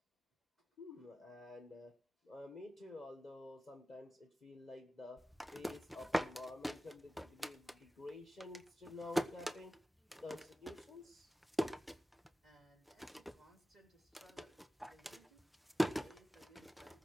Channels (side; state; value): both; normal; correlation 0.95